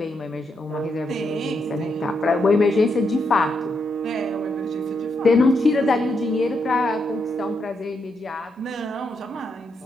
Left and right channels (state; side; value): normal; both; correlation 0.81